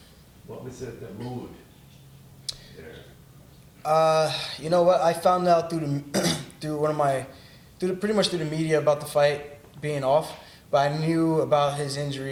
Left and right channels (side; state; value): both; identical; correlation 1.00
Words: What was the mood there? You know what? I found out pretty much through the media about the fight being off, but I knew about his